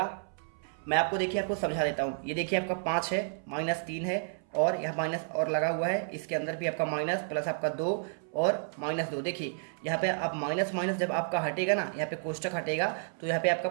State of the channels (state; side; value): silent; left; 57 dB below the other